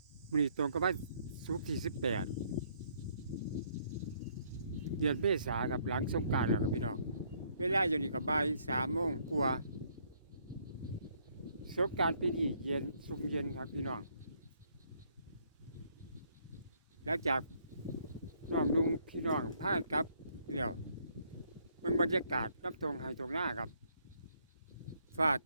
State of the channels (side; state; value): both; inverted; correlation -0.68